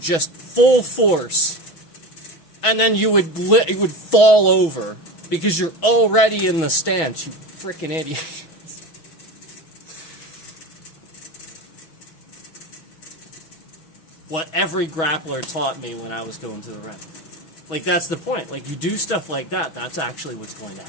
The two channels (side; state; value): right; late; 6.1 ms